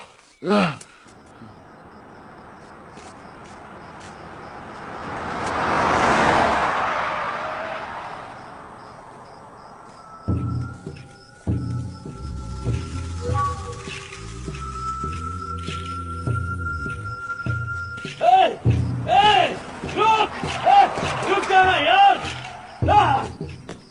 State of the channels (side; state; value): both; identical; correlation 1.00